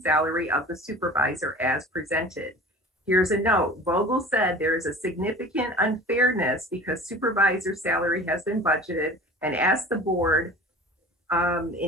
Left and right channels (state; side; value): normal; both; correlation 0.41